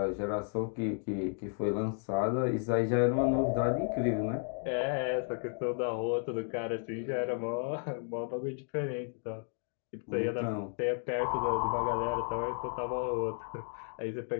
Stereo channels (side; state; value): right; silent; 56 dB below the other